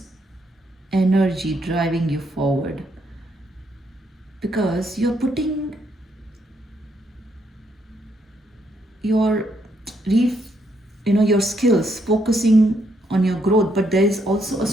energy driving you forward, because you're putting your your skills, focusing on your growth, but there is also a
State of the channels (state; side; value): normal; both; correlation 0.74